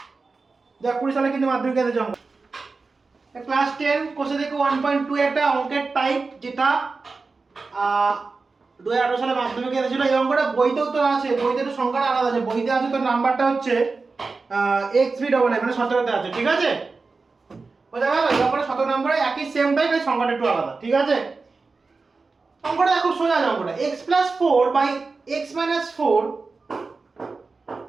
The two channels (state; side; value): quieter; left; 4.1 dB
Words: যা 20 সালে কিন্তু মাধ্যমিক এসেছে অঙ্ক। ক্লাস 10 কোষে দেখো 1.2 একটা অঙ্কের টাইপ, যেটা 2018 সালে মাধ্যমিকে এসেছিল। এই অঙ্কটা বইতেও তো আছে, বইতে তো সংখ্যাটা আলাদা আছে, বইতে আছে তো নাম্বারটা হচ্ছে xb99 মানে 17 তে আছে, ঠিক আছে? বোঝা গেল? এই অঙ্কটা 17 নম্বরে একই সেম টাইপ, এই সংখ্যাটা একটু আলাদা, ঠিক আছে? অঙ্কটা খুব সোজা অঙ্কটা, x + 4 বাই x - 4,